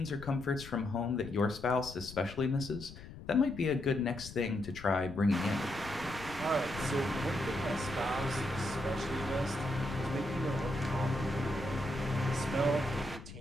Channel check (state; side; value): noise; left; rumble, 14 dB below the sound